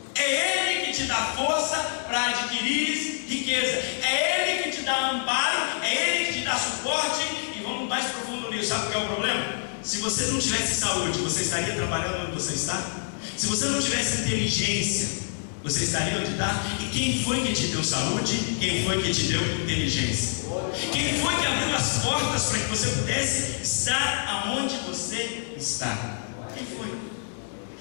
É Ele que te dá força para adquirir riqueza. É Ele que te dá amparo, é Ele que te dá suporte. E vamos mais profundo nisso. Sabe o que é o problema? Se você não tivesse saúde, você estaria trabalhando onde você está? Se você não tivesse inteligência, você estaria onde está? E quem foi que te deu saúde? Quem foi que te deu inteligência? Quem foi que abriu as portas para que você pudesse estar aonde você está? Quem foi?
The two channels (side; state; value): right; silent; 61 dB below the other